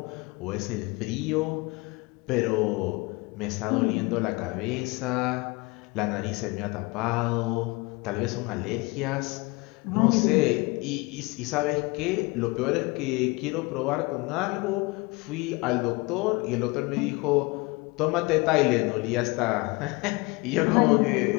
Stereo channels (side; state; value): right; quieter; 25.2 dB